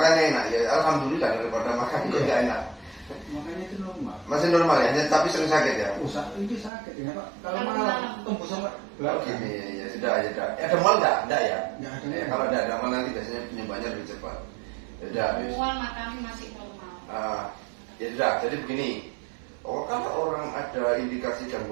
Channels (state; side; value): drops out; left; at 6.7 s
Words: enak ya, alhamdulillah daripada makan itu tidak enak. Makanya itu normal. Masih normal ya, tapi sering sakit ya. Itu sakit ya Pak. Kalau malam tembus sampai belakang. Ya sudah. Ada mal enggak? Enggak ya? Enggak ada. Kalau ada mal nanti biasanya penyembuhannya lebih cepat. Ya Semua makan masih normal. Ya sudah. Jadi begini. Kalau orang ada indikasi